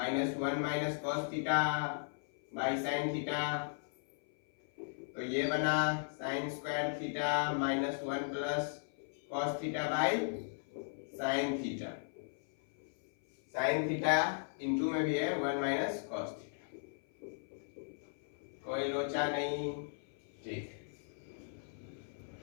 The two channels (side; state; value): right; silent; 53 dB below the other